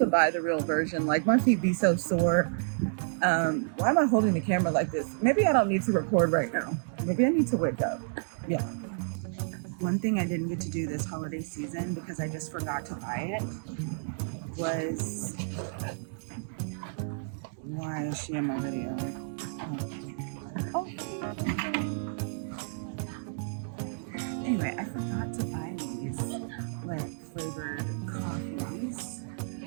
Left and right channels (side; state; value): left; silent; digital silence